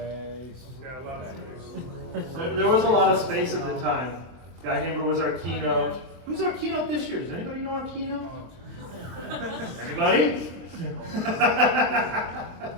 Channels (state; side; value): late; left; 23 ms